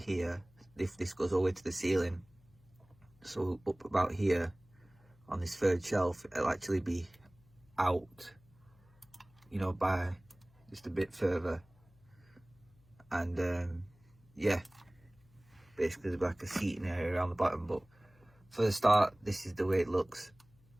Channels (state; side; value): noise; left; hum, 29 dB below the sound